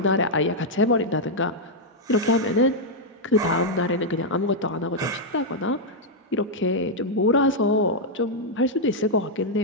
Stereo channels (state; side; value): normal; both; correlation -0.03